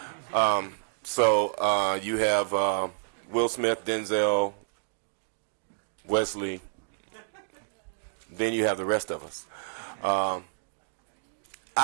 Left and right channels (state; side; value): silent; left; digital silence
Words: So you have Will Smith, Denzel, Wesley. Then you have the rest of us.